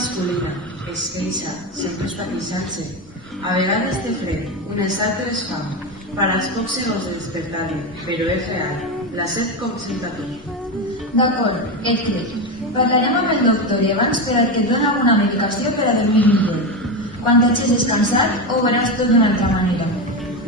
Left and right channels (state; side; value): normal; both; correlation 0.16